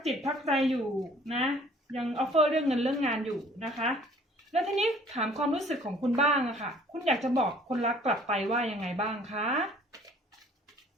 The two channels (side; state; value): both; normal; correlation 0.55